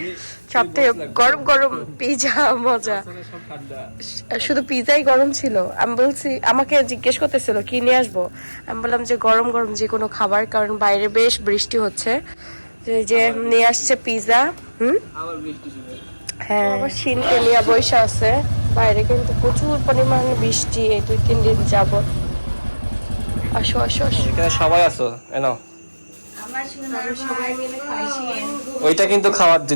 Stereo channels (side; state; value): both; inverted; correlation -1.00